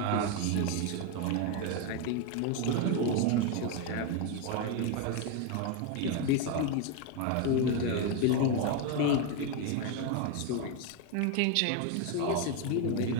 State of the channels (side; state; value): both; different; correlation 0.02